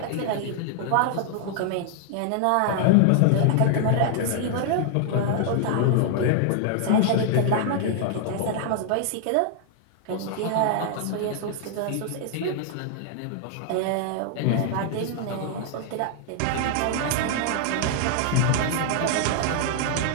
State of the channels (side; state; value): both; different; correlation 0.00